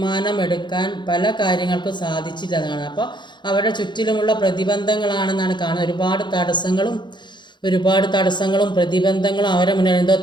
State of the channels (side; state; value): right; late; 0.22 ms